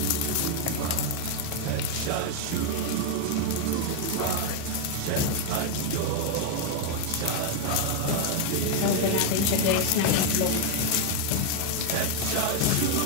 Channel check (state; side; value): different; both; correlation 0.00